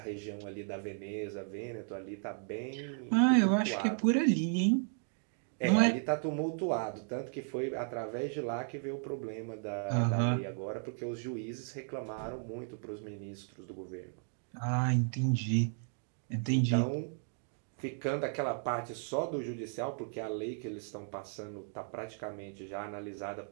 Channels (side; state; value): left; silent; 54 dB below the other